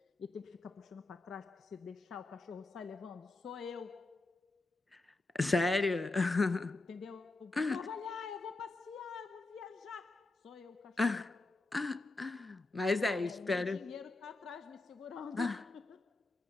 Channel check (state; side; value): quieter; right; 3.2 dB